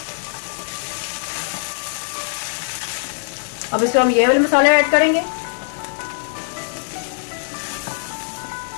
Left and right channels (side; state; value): right; silent; digital silence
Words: अब इसमें हम ये वाले मसाले ऐड करेंगे।